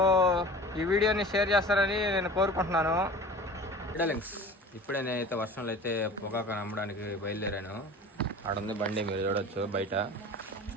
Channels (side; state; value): both; normal; correlation 0.39